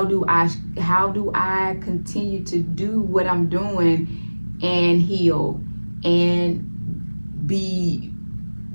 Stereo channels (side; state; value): both; inverted; correlation -1.00